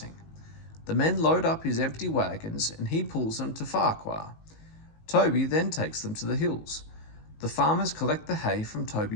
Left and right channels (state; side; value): late; right; 19 ms